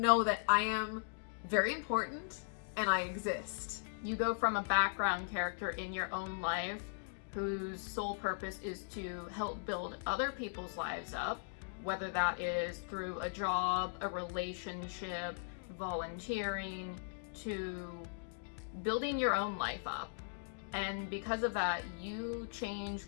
that I am very important and I exist. You go from a background character in your own life whose sole purpose is to help build other people's lives up, whether that is through a job, a relationship, volunteering, to building your own life up. And because of that, you change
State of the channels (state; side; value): silent; right; digital silence